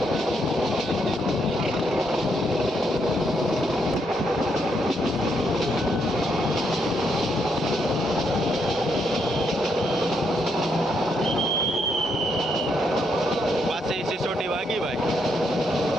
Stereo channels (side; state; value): both; normal; correlation 0.77